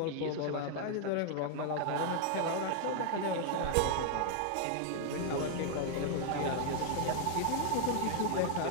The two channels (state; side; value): different; both; correlation 0.00